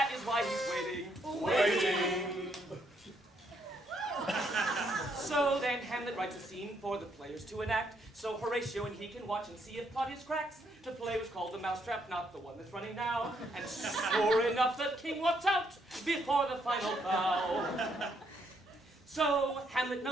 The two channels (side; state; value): both; normal; correlation 0.73